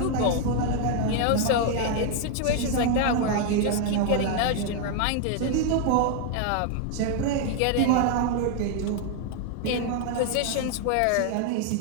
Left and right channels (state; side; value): different; both; correlation 0.00